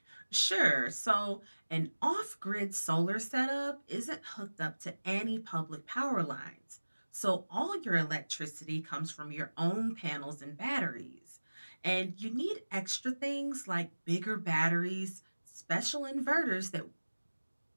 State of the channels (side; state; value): both; inverted; correlation -1.00